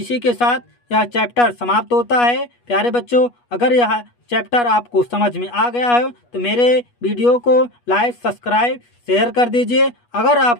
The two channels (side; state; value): right; late; 8.3 ms